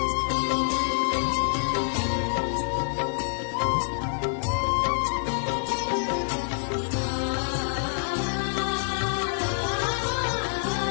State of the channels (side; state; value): right; silent; digital silence